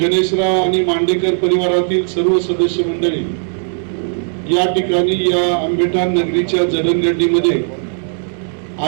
आणि मांडेकर परिवारातील सर्व सदस्य मंडळी या ठिकाणी या आंबेठाण नगरीच्या जडणघडणीमध्ये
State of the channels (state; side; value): silent; left; digital silence